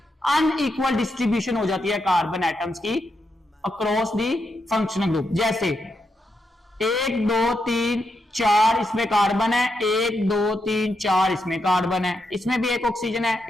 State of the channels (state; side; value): normal; both; correlation 0.83